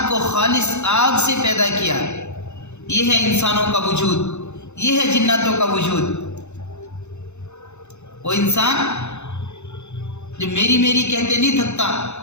کو خالص آگ سے پیدا کیا۔ یہ ہے انسانوں کا وجود، یہ ہے جناتوں کا وجود۔ وہ انسان جو میری میری کہتے نہیں تھکتا،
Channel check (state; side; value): late; right; 0.82 ms